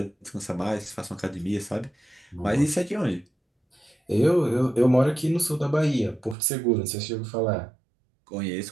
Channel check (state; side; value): drops out; left; at 6.4 s